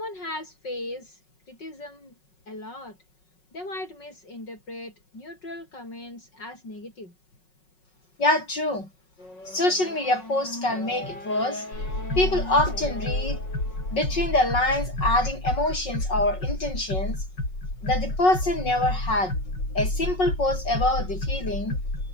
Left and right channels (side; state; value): right; late; 5.4 ms